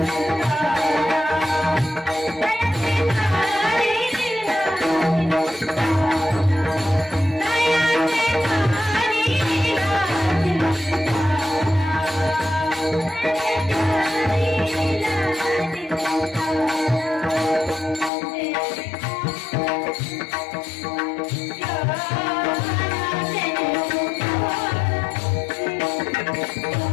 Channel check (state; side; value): drops out; right; at 18.1 s